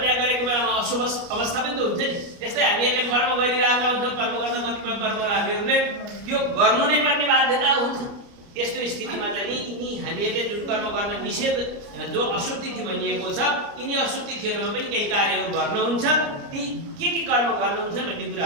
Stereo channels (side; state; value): left; late; 29 ms